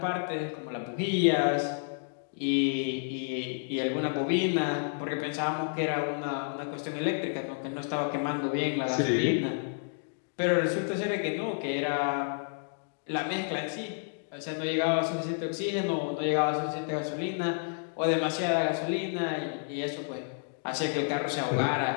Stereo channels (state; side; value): silent; right; digital silence